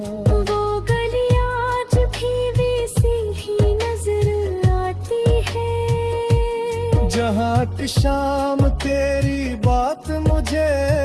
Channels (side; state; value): both; identical; correlation 1.00